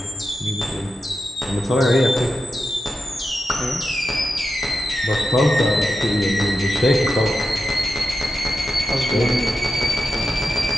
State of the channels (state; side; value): normal; both; correlation 0.90